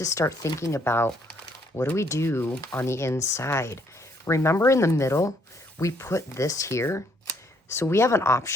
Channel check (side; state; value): both; normal; correlation 0.68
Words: start thinking about what do we do on the inside. Remember in the middle, we put this here. So we have an